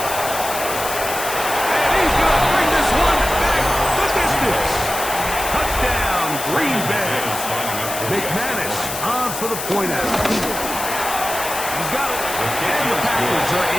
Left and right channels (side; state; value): left; noise; hiss, 6 dB below the sound